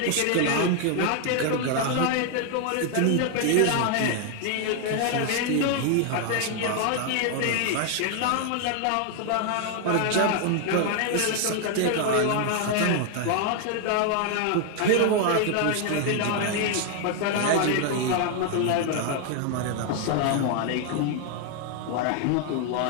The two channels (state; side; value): different; both; correlation 0.00